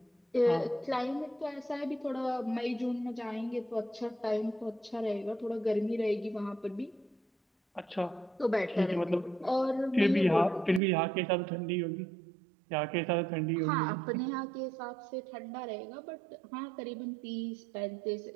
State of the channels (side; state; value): left; drops out; at 10.8 s